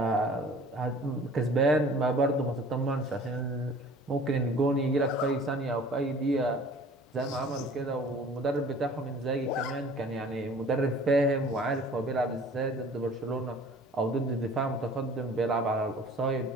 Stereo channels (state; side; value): normal; both; correlation 0.48